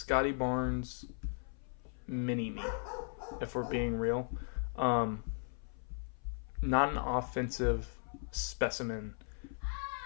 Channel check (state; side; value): silent; right; 53 dB below the other